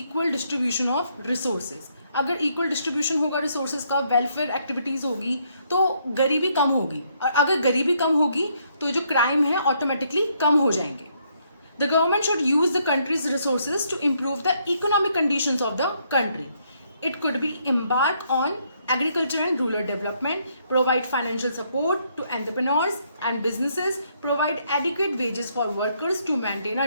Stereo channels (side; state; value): both; inverted; correlation -0.72